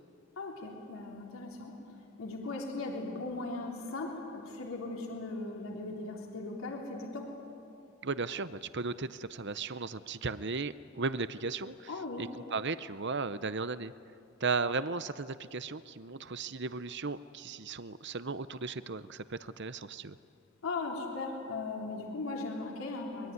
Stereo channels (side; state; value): both; normal; correlation 0.03